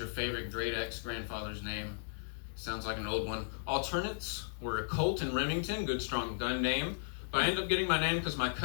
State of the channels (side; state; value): right; silent; digital silence